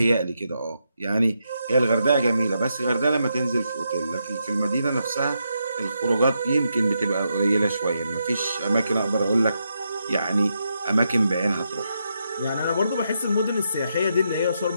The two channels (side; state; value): both; inverted; correlation -0.82